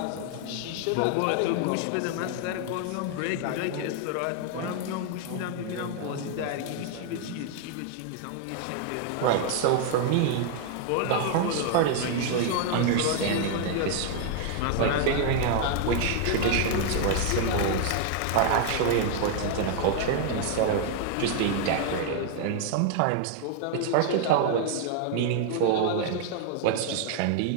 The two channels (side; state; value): both; different; correlation 0.00